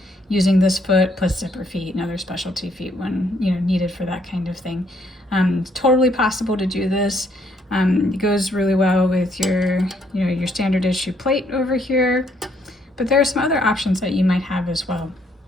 using this foot plus zipper feet and other specialty feet when needed for that kind of thing. Totally possible to do this. It goes really well with your your standard issue plate over here, but there are some other options that you might have as well.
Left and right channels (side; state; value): both; normal; correlation 0.69